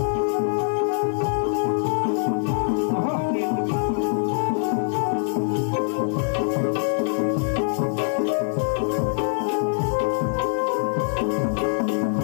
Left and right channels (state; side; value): silent; right; 63 dB below the other